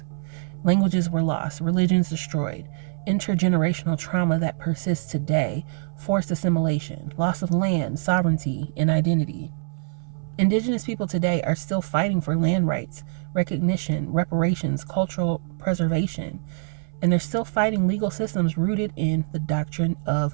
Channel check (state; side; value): silent; left; 62 dB below the other